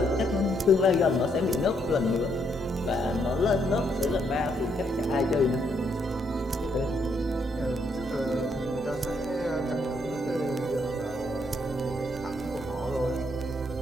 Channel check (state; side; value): normal; both; correlation 0.74